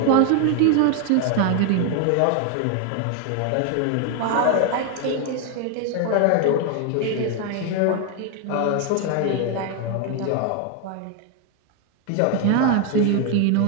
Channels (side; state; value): both; different; correlation 0.01